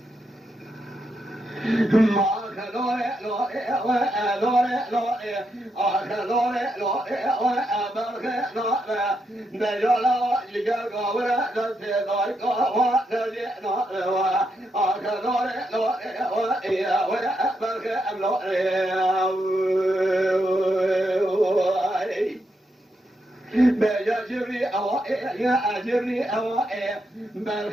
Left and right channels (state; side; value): normal; both; correlation 0.82